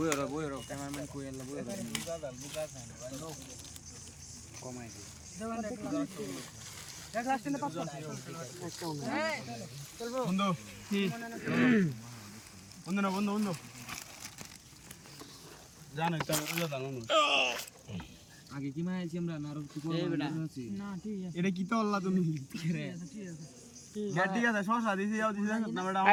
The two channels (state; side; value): identical; both; correlation 1.00